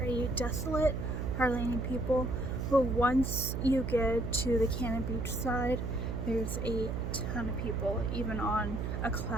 desolate, hardly any people. But once you get to the Cannon Beach side, there's a ton of people, even on a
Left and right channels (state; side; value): noise; right; hum, 3 dB below the sound